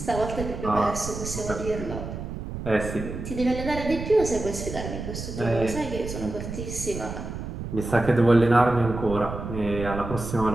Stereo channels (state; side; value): noise; right; rumble, 7 dB below the sound